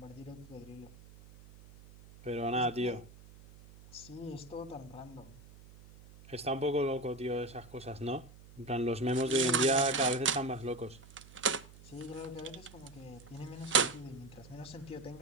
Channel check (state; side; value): noise; right; hum, 20 dB below the sound